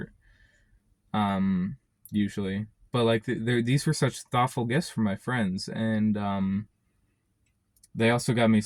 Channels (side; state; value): both; identical; correlation 1.00